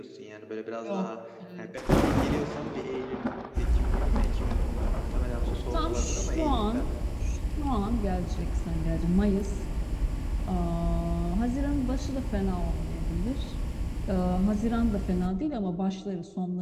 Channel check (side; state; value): both; identical; correlation 1.00